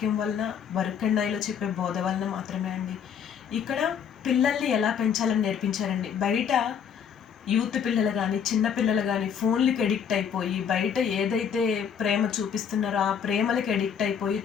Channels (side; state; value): right; quieter; 7.7 dB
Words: వలన బరుకన్నాయిలో చెప్పే బోధ వలన మాత్రమే అండి. ఇక్కడ పిల్లల్ని ఎలా పెంచాలని నేర్పించారండి. బయట యూత్ పిల్లలు కానీ చిన్న పిల్లలు కానీ ఫోన్లకి ఎడిక్ట్ అయిపోయి బయట ఏదైతే ప్రేమ చూపిస్తున్నారో ఆ ప్రేమలకి ఎడిక్ట్ అయిపోయి